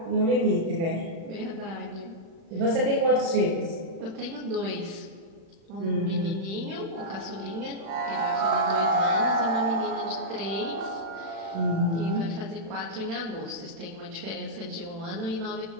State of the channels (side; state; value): left; late; 36 ms